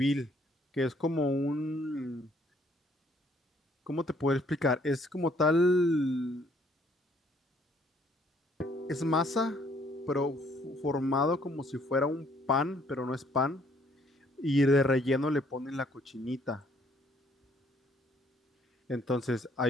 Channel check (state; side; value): normal; both; correlation 0.65